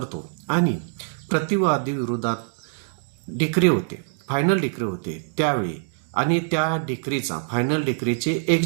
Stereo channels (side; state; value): left; silent; digital silence